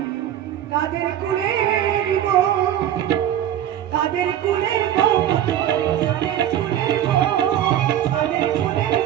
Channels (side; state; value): left; quieter; 11.2 dB